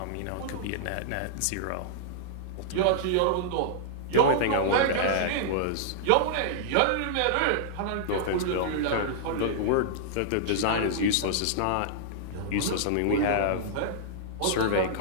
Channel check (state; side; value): different; both; correlation -0.01